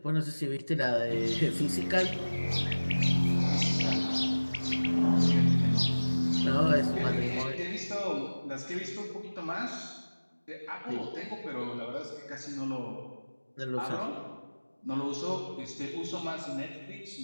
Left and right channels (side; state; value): both; inverted; correlation -1.00